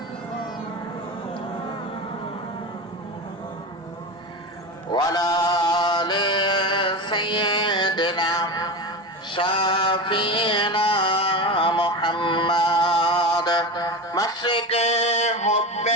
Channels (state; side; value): normal; both; correlation 0.24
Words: وعلى آل سيدنا شافينا محمد مشرق حب